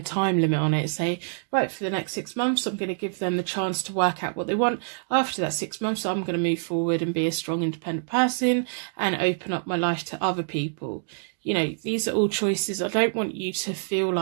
time limit on it. Say, right, for the next 6 months, I'm going to give them the chance to work out what they want. After that 6 months, I'm going to move forward and be a strong, independent person and open up my life to other people. You know, these are all choices. I don't want you to feel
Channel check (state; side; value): silent; left; digital silence